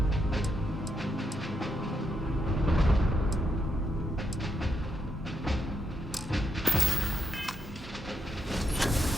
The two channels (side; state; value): both; normal; correlation 0.81